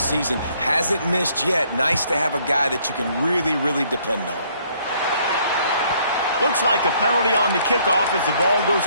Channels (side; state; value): both; inverted; correlation -0.65